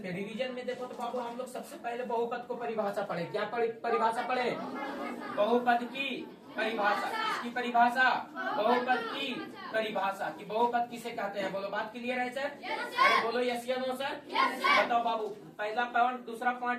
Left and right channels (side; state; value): both; identical; correlation 1.00